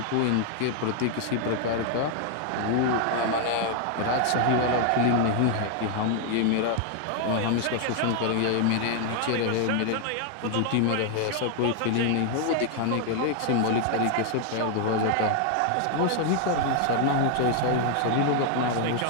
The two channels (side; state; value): both; different; correlation 0.00